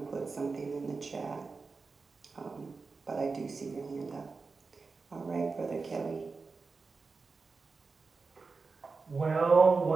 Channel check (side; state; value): left; quieter; 4.3 dB